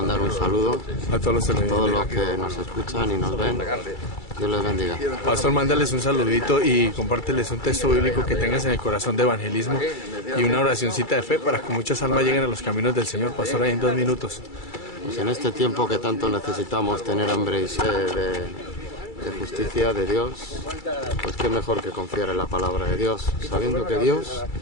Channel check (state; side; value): late; right; 2.3 ms